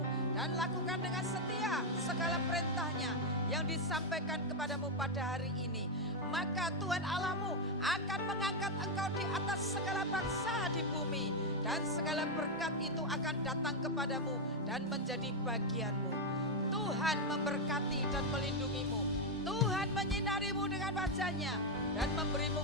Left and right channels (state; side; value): normal; both; correlation 0.02